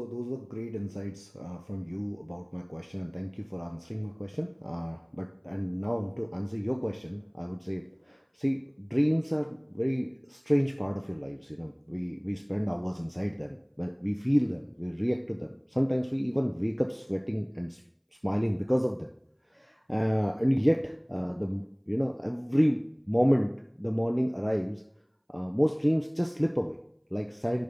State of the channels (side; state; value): both; identical; correlation 1.00